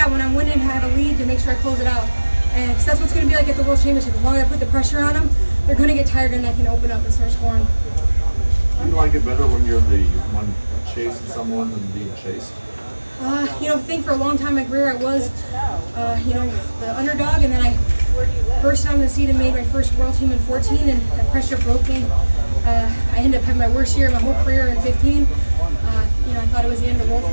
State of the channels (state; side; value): inverted; both; correlation -1.00